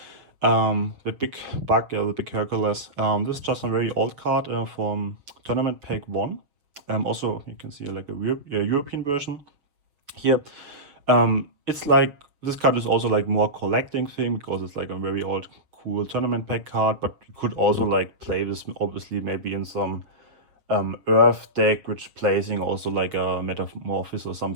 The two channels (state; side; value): late; left; 6.9 ms